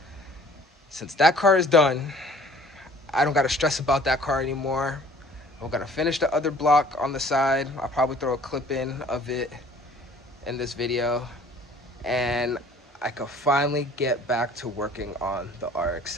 since that car is done, I don't got to stress about that car anymore. I'm gonna finish the other block on the side. I'll probably throw a clip in of it in this video, and I could finally get back to working on the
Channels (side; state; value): both; normal; correlation 0.52